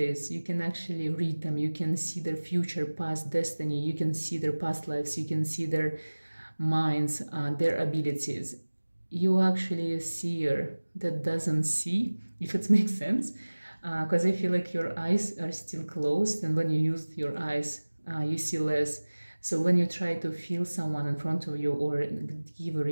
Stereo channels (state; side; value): inverted; both; correlation -1.00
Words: you can actually read them. You can see their future, past destiny. You can see their past lives. You can see their minds, their abilities. You actually a seer that doesn't see, if it makes sense. Because I feel like your eyes are still closed, and when you use your eyes, you see less. So when you try to feel someone in front of you or give a